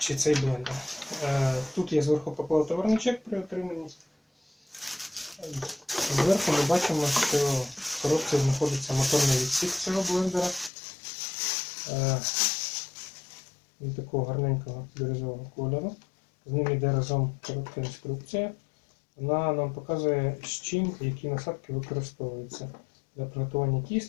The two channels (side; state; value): right; drops out; at 10.7 s